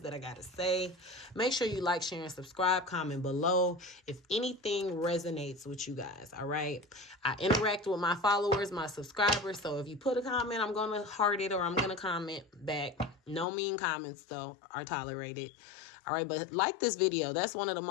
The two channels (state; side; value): drops out; right; at 13.5 s